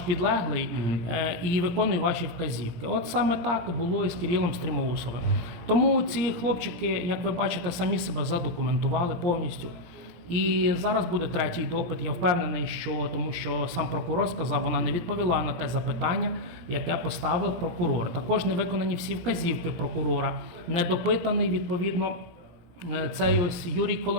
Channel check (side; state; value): left; late; 17 ms